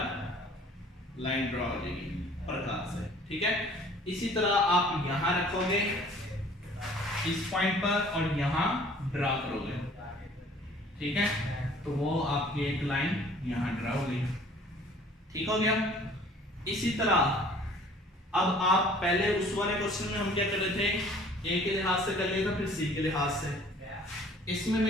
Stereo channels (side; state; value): both; normal; correlation 0.53